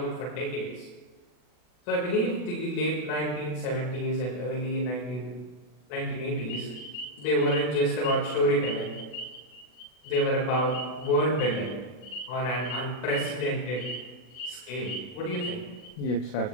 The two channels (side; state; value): right; late; 40 ms